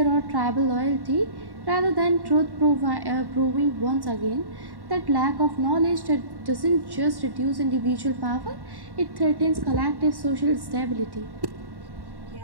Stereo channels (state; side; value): late; left; 1.1 ms